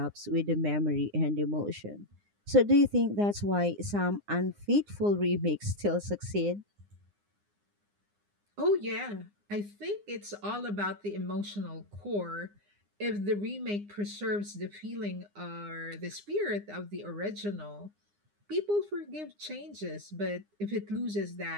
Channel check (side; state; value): left; late; 9.8 ms